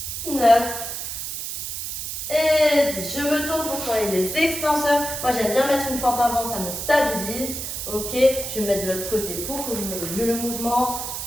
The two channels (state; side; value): noise; right; hiss, 5 dB below the sound